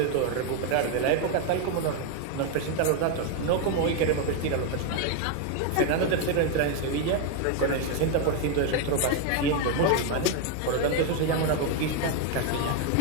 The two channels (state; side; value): different; both; correlation 0.01